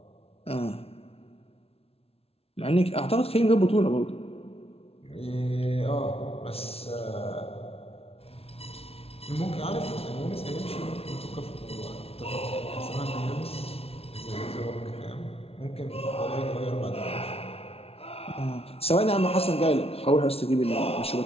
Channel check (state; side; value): late; right; 0.29 ms